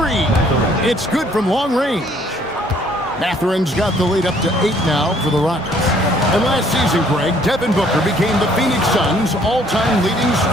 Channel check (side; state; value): both; normal; correlation 0.62